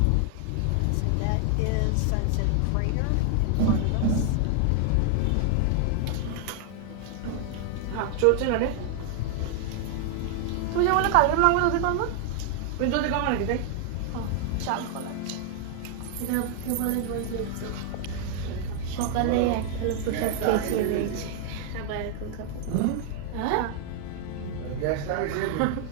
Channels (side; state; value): both; different; correlation 0.00